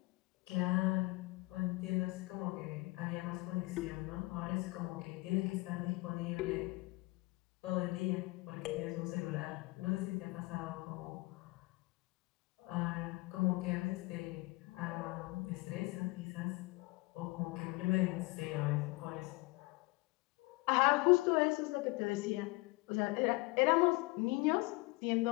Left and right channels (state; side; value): quieter; right; 23.7 dB